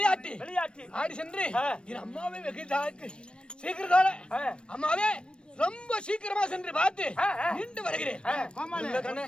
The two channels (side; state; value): right; late; 0.056 ms